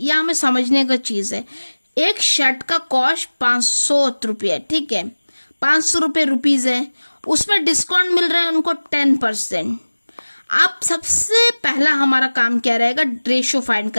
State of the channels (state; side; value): inverted; both; correlation -1.00